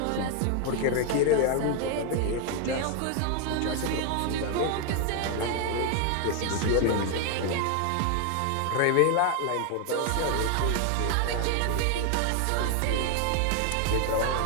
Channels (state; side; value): different; both; correlation 0.01